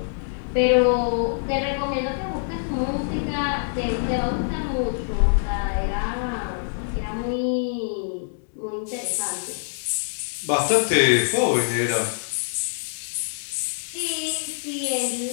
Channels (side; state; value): right; silent; digital silence